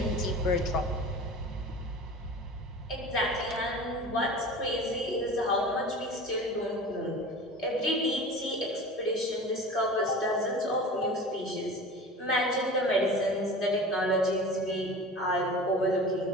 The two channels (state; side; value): normal; both; correlation 0.37